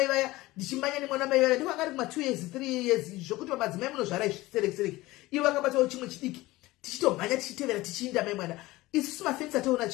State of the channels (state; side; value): quieter; right; 19.1 dB